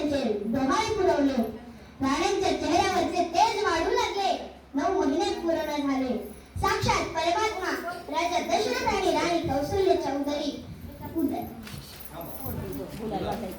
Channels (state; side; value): identical; both; correlation 1.00